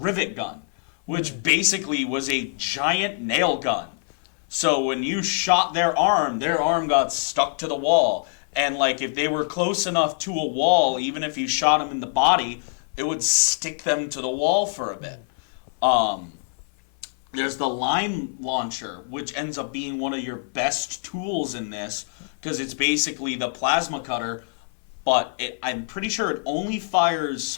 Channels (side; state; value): right; silent; 57 dB below the other